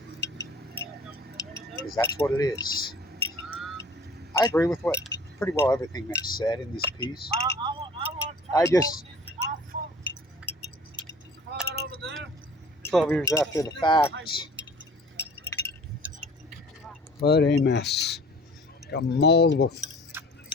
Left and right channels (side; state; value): both; normal; correlation 0.47